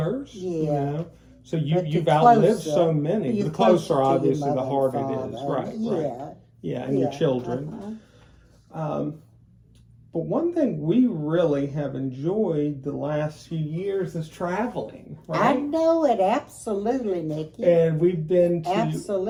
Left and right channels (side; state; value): both; identical; correlation 1.00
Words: So you've outlived so many. The closer, obviously, the harder it is. Right. And your children. But one thing we really have enjoyed the last few years is traveling. Right? I know it, absolutely, Nikki. And we've been to...